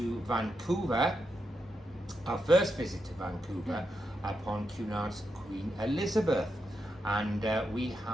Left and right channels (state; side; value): normal; both; correlation 0.85